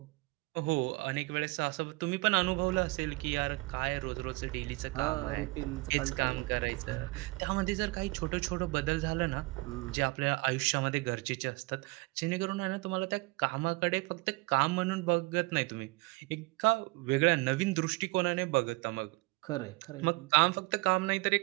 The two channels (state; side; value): quieter; left; 24.3 dB